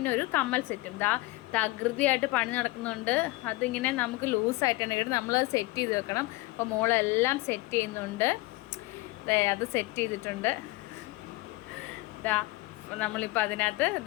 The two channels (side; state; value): right; quieter; 21.0 dB